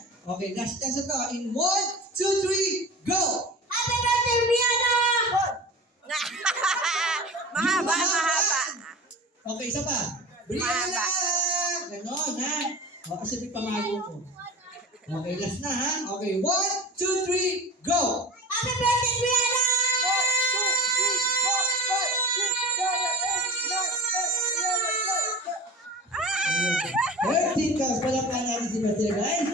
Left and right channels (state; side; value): normal; both; correlation 0.35